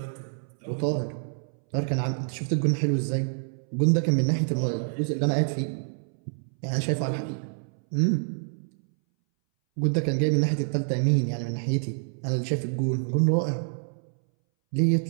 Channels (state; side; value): silent; left; 60 dB below the other